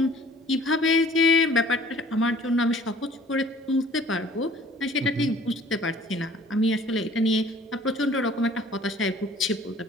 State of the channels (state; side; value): normal; both; correlation 0.51